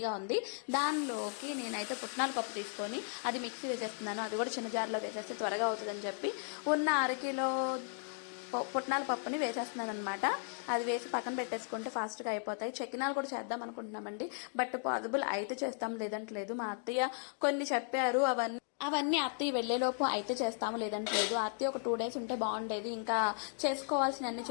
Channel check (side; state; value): right; silent; 54 dB below the other